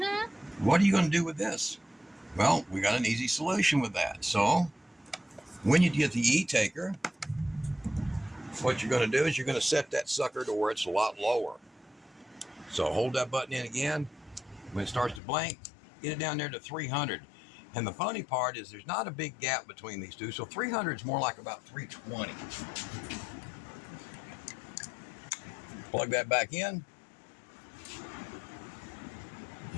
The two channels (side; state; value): right; drops out; at 15.2 s